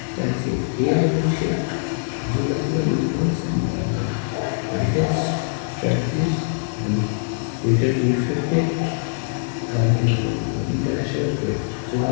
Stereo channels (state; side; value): silent; right; 57 dB below the other